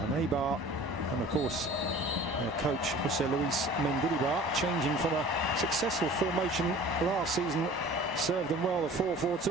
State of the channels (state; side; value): normal; both; correlation 0.45